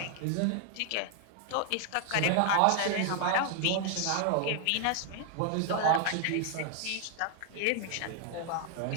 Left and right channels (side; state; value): both; different; correlation 0.00